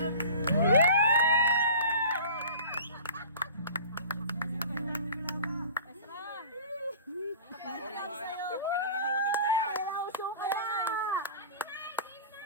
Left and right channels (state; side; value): inverted; both; correlation -0.39